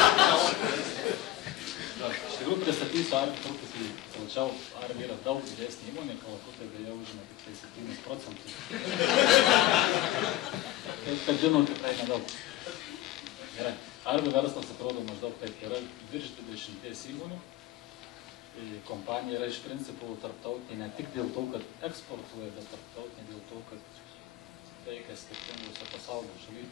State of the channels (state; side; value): quieter; right; 15.0 dB